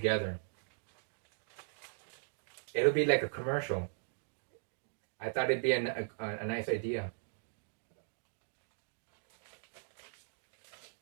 It'll be like a commercial. I thought it'd be a nice idea.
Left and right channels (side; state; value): left; silent; digital silence